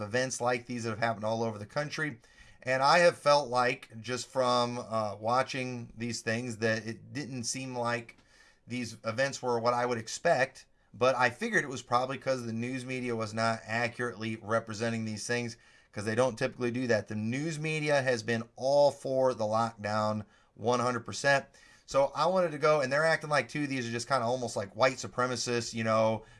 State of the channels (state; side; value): identical; both; correlation 1.00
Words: events like these that have happened all over the country. And I have felt like, just from watching these things, that it didn't seem like these events were what I would expect. But I figured it was probably because the news media was not accurately representing these things, because they don't typically do that. The news media has been all for the lockdown 100%. So I wanted to go, and they're acting like, too, these are just kind of almost like white supremacists,